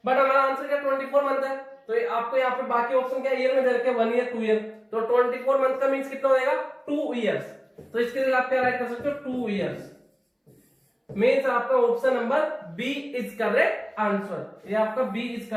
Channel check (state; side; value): identical; both; correlation 1.00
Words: बट हमारा आंसर क्या 24 मंथ है, तो आपको यहाँ पे बाकी ऑप्शन क्या ईयर में दे रखे 1 ईयर 2 ईयर, तो 24 मंथ का मींस कितना हो जाएगा 2 इयर्स, तो इसके लिए आप क्या राइट कर सकते हो 2 इयर्स, मींस आपका option number B is correct answer, ये आपका बी इज